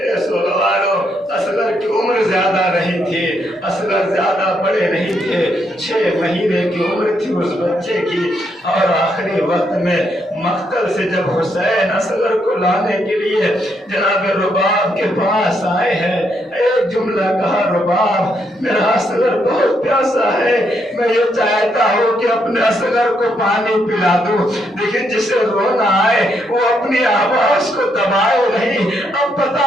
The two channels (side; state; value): both; normal; correlation 0.76